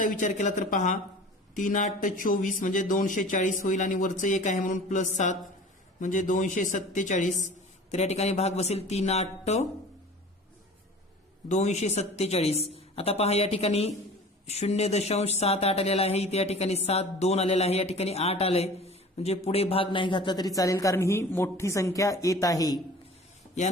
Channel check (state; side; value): normal; both; correlation 0.42